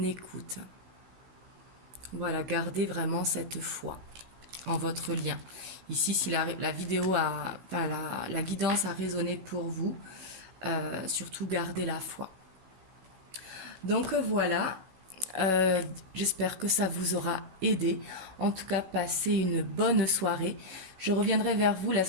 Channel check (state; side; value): late; left; 16 ms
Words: écoute. Voilà, gardez vraiment cette foi en votre lien. Ici, si la vidéo la guidance a résonné pour vous, surtout gardez la foi. Donc voilà, J'espère que ça vous aura aidé. En tout cas, passez une bonne soirée. Je reviendrai vers vous la